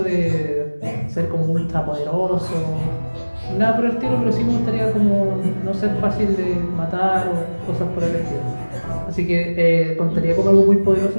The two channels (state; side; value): inverted; both; correlation -1.00